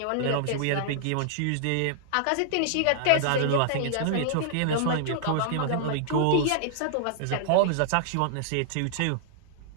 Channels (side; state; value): both; different; correlation -0.01